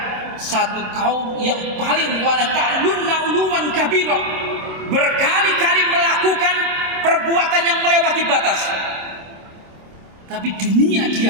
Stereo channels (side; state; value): left; late; 27 ms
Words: satu kaum yang paling wala ta'lunna uluwan kabira, berkali-kali melakukan perbuatan yang melewati batas. Tapi dunia